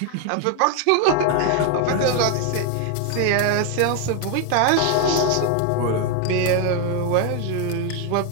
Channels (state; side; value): different; both; correlation 0.01